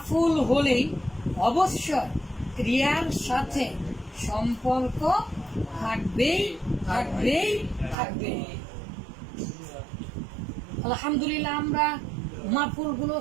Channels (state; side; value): drops out; left; at 8.0 s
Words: হলেই অবশ্যই ক্রিয়ার সাথে সম্পর্ক থাকবেই থাকবেই থাকবে। আলহামদুলিল্লাহ আমরা